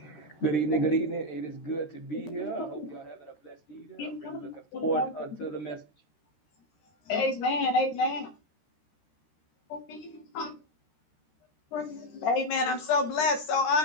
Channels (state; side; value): late; right; 13 ms